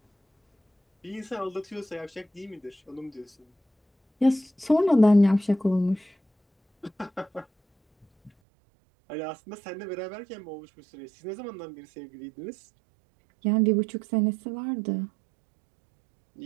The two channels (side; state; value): left; drops out; at 8.3 s